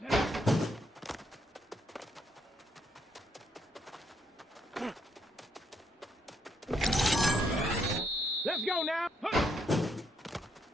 Let's go now. Huh.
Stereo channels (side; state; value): both; normal; correlation 0.74